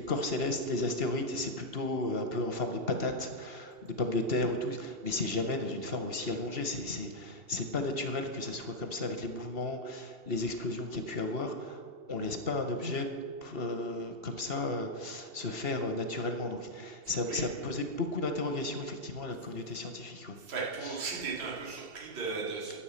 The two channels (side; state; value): left; late; 2.7 ms